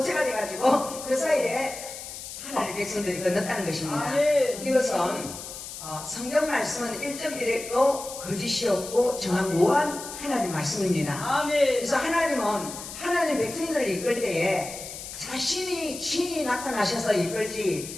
돼가지고 그 사이에 하나님의 백성들이 건넜다는 것입니다. 이것은 성경 말씀은 1.1에도 거짓이었고 정확무한 하나님 말씀입니다. 그래서 하나님은 하나님 백성들을 이끌 때에 자신이 친히 나타나셔서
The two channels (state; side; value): noise; left; hiss, 10 dB below the sound